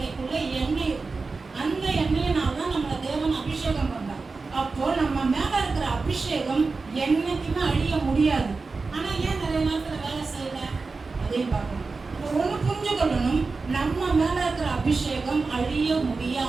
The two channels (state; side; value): quieter; left; 4.1 dB